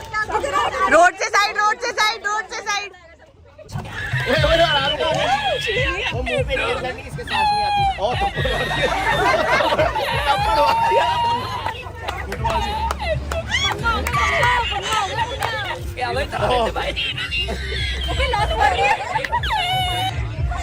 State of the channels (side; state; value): both; identical; correlation 1.00